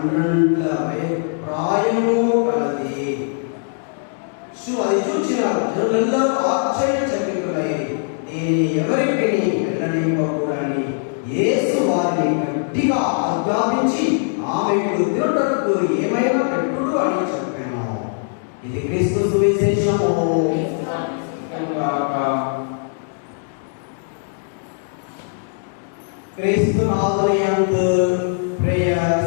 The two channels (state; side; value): silent; right; digital silence